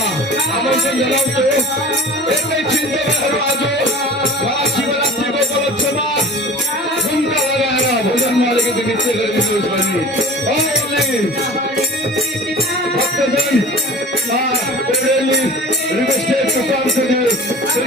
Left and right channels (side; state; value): both; normal; correlation 0.40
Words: आमंत्रण जनाते एक चिंता आज महाशिवरात्रि को उपलक्ष्य में झुमका लगाएर भोजन मालिक नृत्य गरिदिनुहोस् भनी भक्तजन requested to come to the Sri